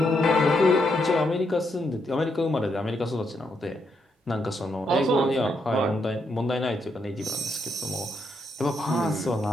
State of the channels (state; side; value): normal; both; correlation 0.78